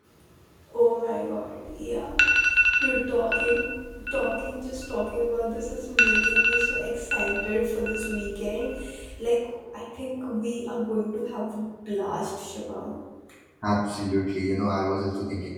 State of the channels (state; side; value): identical; both; correlation 1.00